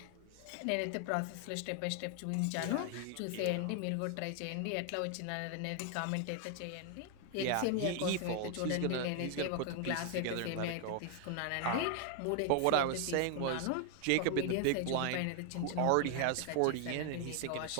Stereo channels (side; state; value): both; different; correlation 0.00